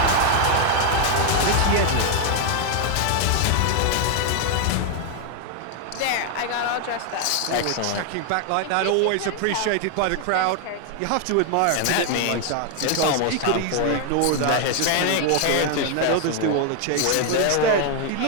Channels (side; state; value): both; different; correlation 0.00